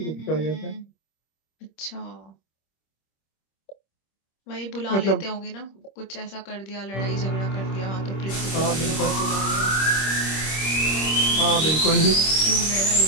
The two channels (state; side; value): late; right; 26 ms